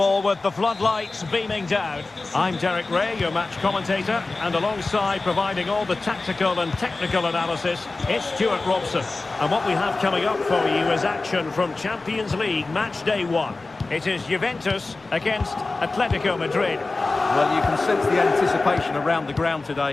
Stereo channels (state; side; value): quieter; right; 3.5 dB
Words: with the floodlights beaming down. I'm Derek Ray, your match commentator, and alongside providing all the tactical and technical analysis, it's Stuart Robson. And what we have coming up for you is action from Champions League match day 1. It is Juventus against Atletico Madrid. Well, you can sense the anticipation around the ground